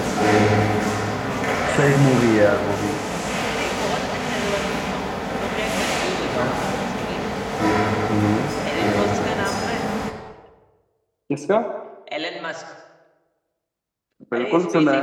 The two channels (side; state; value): both; identical; correlation 1.00